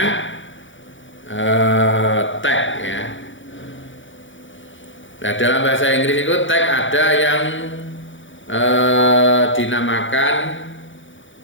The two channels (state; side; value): late; right; 0.56 ms